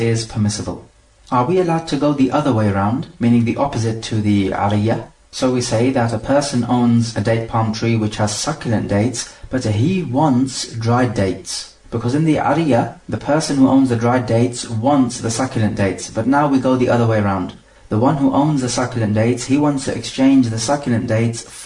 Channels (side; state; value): both; identical; correlation 1.00